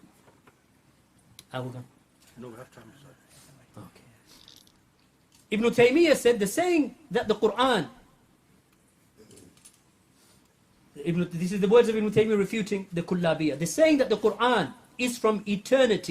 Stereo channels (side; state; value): both; identical; correlation 1.00